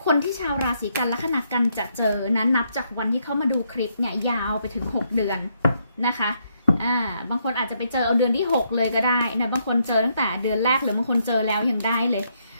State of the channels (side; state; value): both; inverted; correlation -0.75